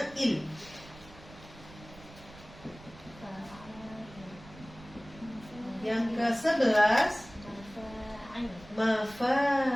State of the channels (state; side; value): noise; right; rumble, 19 dB below the sound